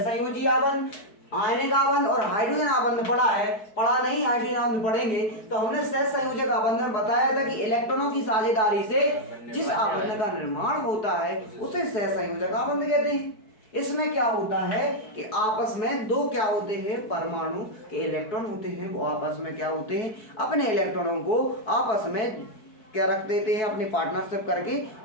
आबंध, आयनिक आबंध और हाइड्रोजन आबंध पढ़ा है। पढ़ा नहीं, हाइड्रोजन आबंध पढ़ेंगे। तो हमने सहसंयोजक आबंध में बताया था कि इलेक्ट्रॉनों की साझेदारी से जिस आबंध का निर्माण होता है उसे सहसंयोजक आबंध कहते हैं। इसमें क्या होता है कि आपस में दो क्या होते हैं, परमाणु के इलेक्ट्रॉन होते हैं, वो आपस में क्या होते हैं, अपने इलेक्ट्रॉनों को आपस में क्या रख देते हैं, अपनी पार्टनरशिप करके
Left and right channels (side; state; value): right; late; 4.6 ms